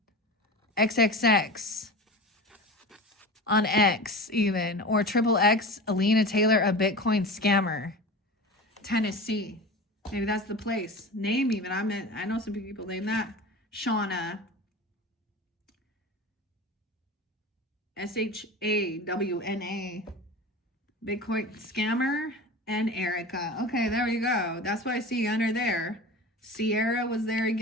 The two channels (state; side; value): normal; both; correlation 0.32